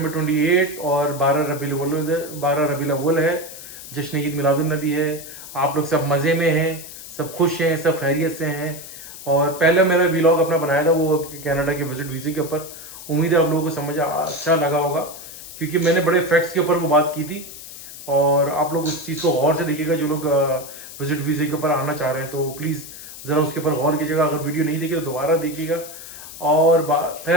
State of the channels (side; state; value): left; noise; hiss, 14 dB below the sound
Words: 28 और 12 रबीउल अव्वल है। जश्न ईद मिलादुन नबी है। आप लोग सब मज़े में हैं, सब खुश हैं, सब खैरियत से हैं। और पहले मेरा व्लॉग अपना बनाया था वो कनाडा के विजिट वीज़े के ऊपर। उम्मीद है आप लोगों को समझ अच्छा लगा होगा, क्योंकि मैंने बड़े फैक्ट्स के ऊपर वो बात की थी। और आप लोग उस चीज़ को गौर से देखिएगा, जो लोग विजिट वीज़े के ऊपर आना चाह रहे हैं तो प्लीज़ ज़रा उसके ऊपर गौर कीजिएगा। अगर वीडियो नहीं देखी तो दोबारा देखिएगा। और